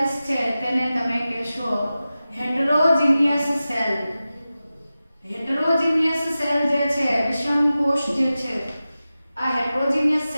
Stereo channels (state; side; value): inverted; both; correlation -0.94